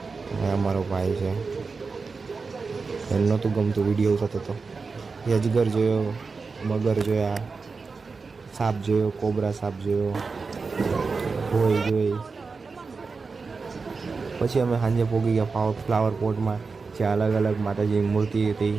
અમારો ભાઈ છે, એને નહોતું ગમતું, વિડીયો થતો હતો. અજગર જોયો, મગર જોયા, સાપ જોયો, કોબરા સાપ જોયો, ભોય જોઈ. પછી અમે સાંજે પહોંચી ગયા ફ્લાવર પોટમાં, જ્યાં અલગ અલગ માતાજીની મૂર્તિ હતી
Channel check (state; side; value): quieter; left; 4.5 dB